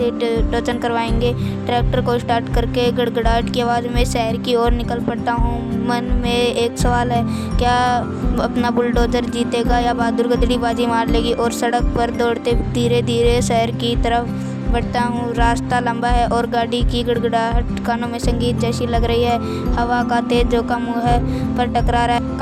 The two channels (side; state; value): both; identical; correlation 1.00